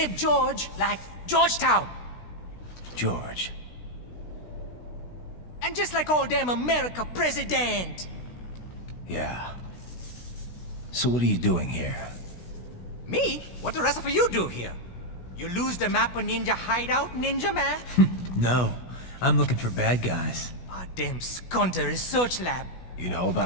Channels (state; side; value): late; right; 16 ms